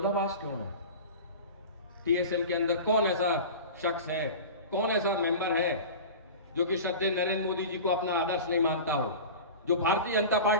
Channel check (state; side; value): inverted; both; correlation -0.33